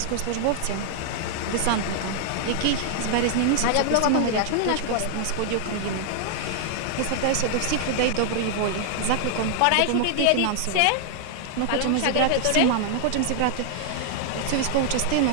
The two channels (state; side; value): different; both; correlation 0.00